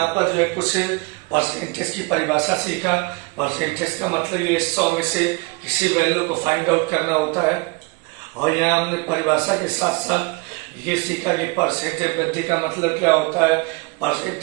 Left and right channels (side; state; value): left; quieter; 27.2 dB